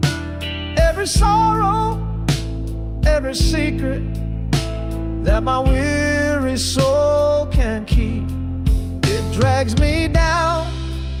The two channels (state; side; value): identical; both; correlation 1.00